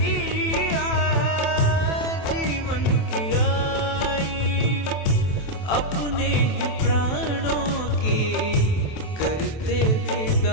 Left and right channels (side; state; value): right; late; 27 ms